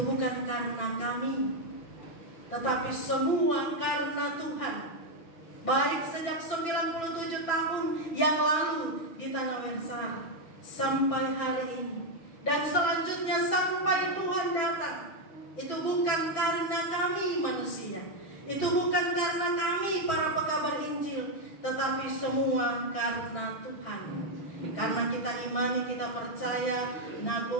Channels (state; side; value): late; right; 6.1 ms